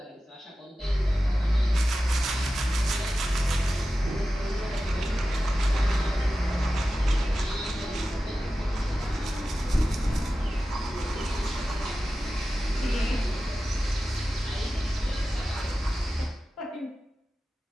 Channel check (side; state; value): both; normal; correlation 0.94